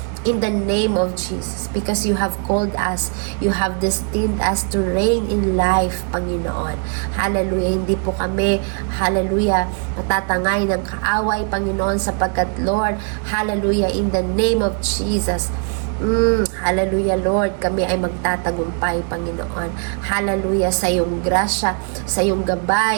In the name of Jesus, because you have called us, you have destined us to reign in life, Panginoon. Hallelujah, hindi po kami, hallelujah, matatangay ng kaaway, Panginoon, sapagkat, Lord, hallelujah, in the name of Jesus, hallelujah, Lord, kami ay magtatagumpay, Panginoon. Hallelujah, sa iyong grasya, sa iyong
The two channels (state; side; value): quieter; left; 39.5 dB